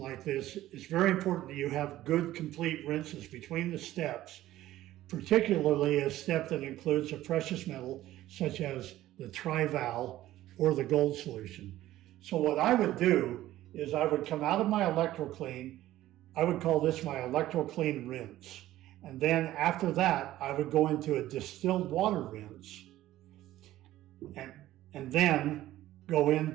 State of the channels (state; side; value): quieter; left; 14.7 dB